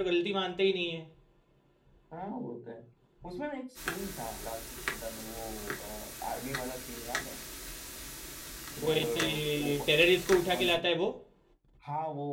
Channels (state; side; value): identical; both; correlation 1.00